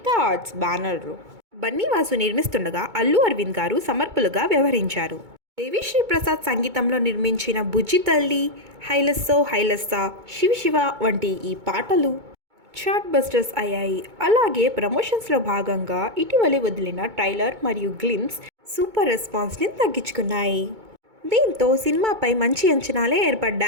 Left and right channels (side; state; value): left; late; 2.2 ms